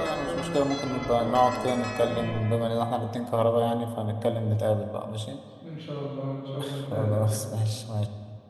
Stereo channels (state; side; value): identical; both; correlation 1.00